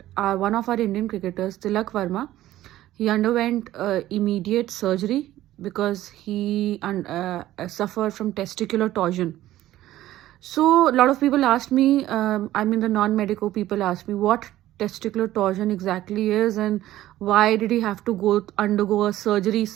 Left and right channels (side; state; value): left; quieter; 14.5 dB